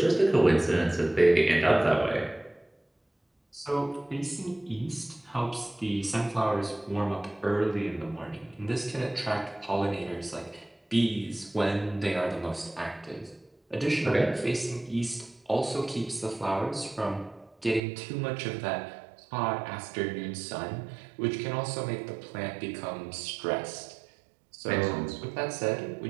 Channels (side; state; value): left; drops out; at 17.8 s